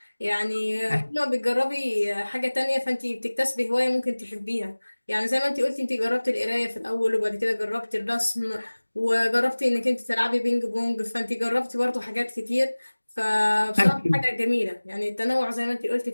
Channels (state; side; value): inverted; both; correlation -1.00